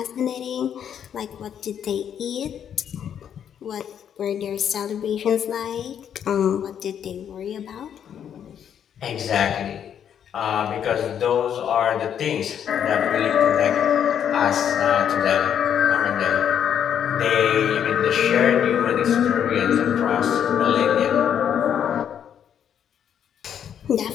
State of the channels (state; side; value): quieter; right; 8.9 dB